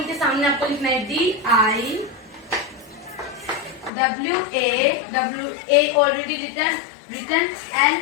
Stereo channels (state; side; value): drops out; right; at 3.9 s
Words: सामने आपको लिखना है DIWA already written